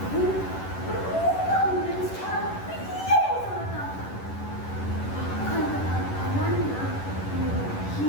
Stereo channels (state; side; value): late; right; 11 ms